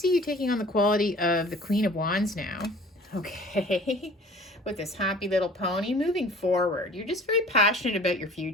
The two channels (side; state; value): both; normal; correlation 0.47